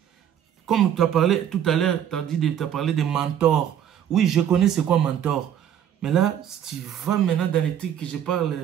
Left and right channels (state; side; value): quieter; left; 9.8 dB